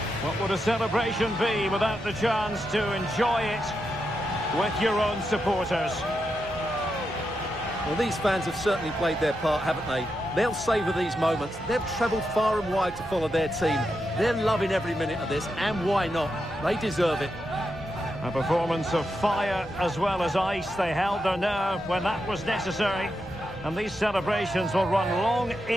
What would a celebration be without the chance to enjoy it with your own supporters? Well, these fans have certainly played their part, haven't they? They'll savour these moments. They've travelled far and wide to follow their team. They're loving every minute of this, and why not? They deserve it. A performance of fire as well as ice. They held their nerve when that was necessary. And these celebrations will run long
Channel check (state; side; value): normal; both; correlation 0.86